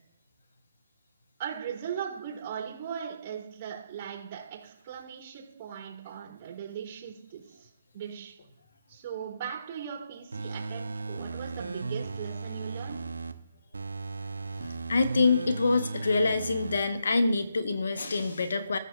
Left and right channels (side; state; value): both; inverted; correlation -0.83